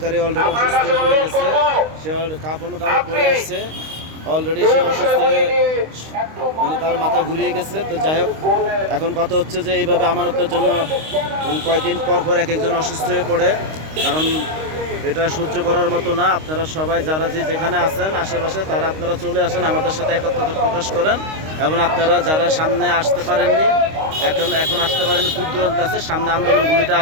অলরেডি অসুস্থ হয়ে গেছে, সে কাপড় পরে আসছে অলরেডি, সে অসুস্থ হয়ে মানে তার মাথা ঘুরিয়ে গেছে। তো যাই হোক, এখন কথা হচ্ছে যে এইভাবে আমানতের জন্য কয়েকদিন পর পর এক একজন অসুস্থ হয়ে পড়ে, কারণ এটা সহ্য করার মতো না। আপনারা সবাই যারা যেখানে আছেন আশেপাশে, তারা আপনারা চলে আসেন, আমাদের সাথে একত্রতা প্রকাশ করেন। এবং আপনারা যারা সামনে আসতে পারেননি, এখন আসতে পারেন, দূর দূরান্তে আছে, সামনে আন্দোলনগুলিতে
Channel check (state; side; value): late; left; 26 ms